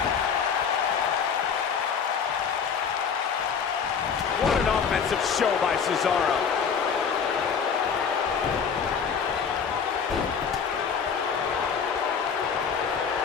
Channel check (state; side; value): quieter; right; 6.5 dB